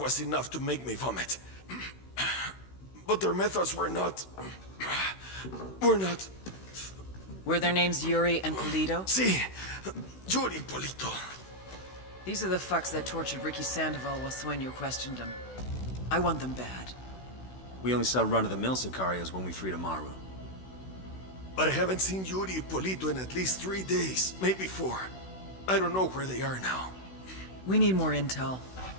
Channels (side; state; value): right; late; 16 ms